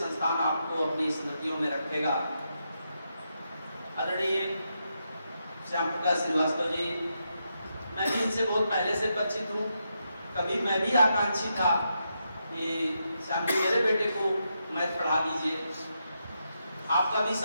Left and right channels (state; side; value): inverted; both; correlation -0.83